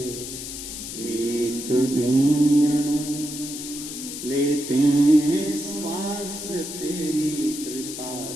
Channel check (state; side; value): noise; left; hiss, 8 dB below the sound